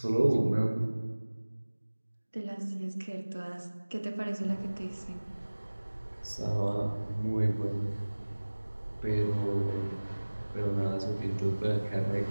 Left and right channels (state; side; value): inverted; both; correlation -1.00